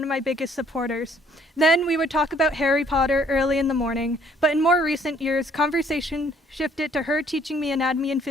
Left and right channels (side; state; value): both; normal; correlation 0.62